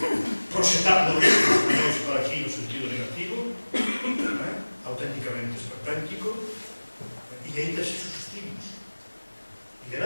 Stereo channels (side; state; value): both; inverted; correlation -1.00